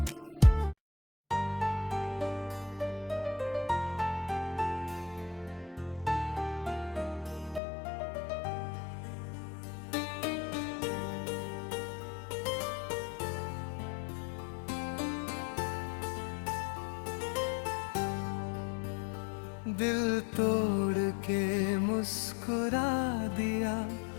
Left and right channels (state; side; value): drops out; right; at 7.6 s